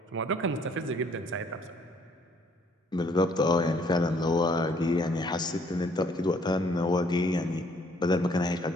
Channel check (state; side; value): normal; both; correlation 0.63